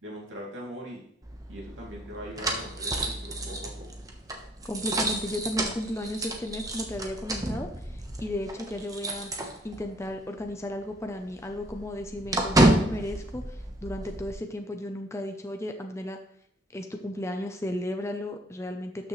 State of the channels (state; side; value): normal; both; correlation 0.63